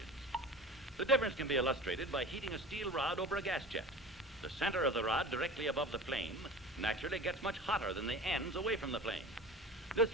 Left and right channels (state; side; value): normal; both; correlation 0.36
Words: The difference can be illustrated by heating a steel rod over a gas jet. The center of the rod directly above the flame naturally gets much hotter than the ends away from the flame. This